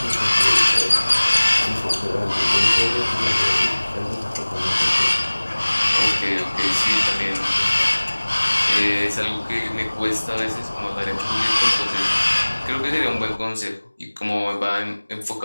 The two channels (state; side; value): inverted; both; correlation -1.00